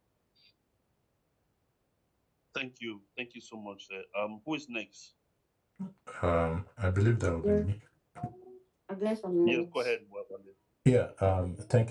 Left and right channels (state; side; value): identical; both; correlation 1.00